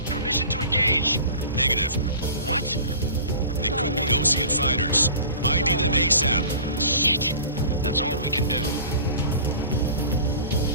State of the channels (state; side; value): inverted; both; correlation -0.41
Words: permission to engage. Negative. What? They could be Ocean fighters. ID them ASAP. Shit. That's all we can do.